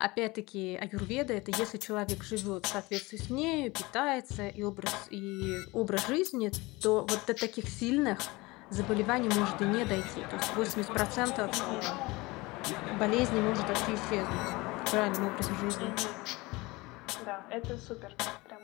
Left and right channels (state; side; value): quieter; right; 22.7 dB